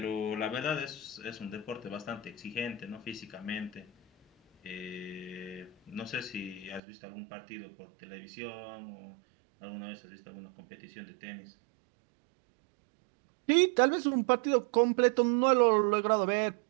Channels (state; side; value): drops out; left; at 6.8 s